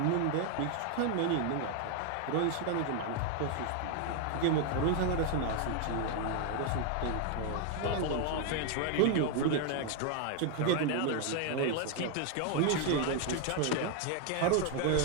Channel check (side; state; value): both; different; correlation 0.00